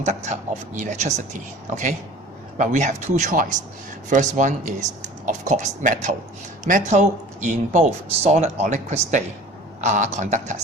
of electricity. Okay, well, we have two choices. First one is, of course, metal. Metal in both solid or liquid state are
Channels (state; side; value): normal; both; correlation 0.44